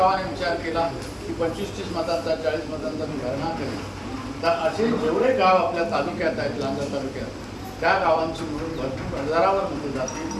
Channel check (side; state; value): both; identical; correlation 1.00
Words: विचार केला की 25-30 मतांचा 40 मतांचा मी भरणा करेल, तर असे जेवढे गाव आपल्या तालुक्यात आहेत, लांजा तालुक्यात, त्या गावांची मिळून भरपूर हजारावर मतं